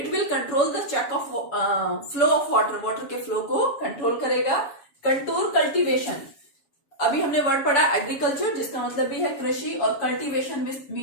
will control the check of flow of water के फ्लो को कंट्रोल करेगा। कंटूर कल्टीवेशन, अभी हमने वर्ड पढ़ा एग्रीकल्चर, जिसका मतलब भी है कृषि, और कल्टीवेशन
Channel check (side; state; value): right; late; 7.2 ms